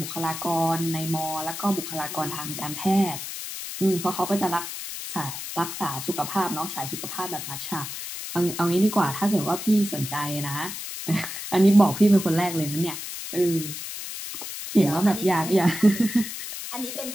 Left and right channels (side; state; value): left; noise; hiss, 8 dB below the sound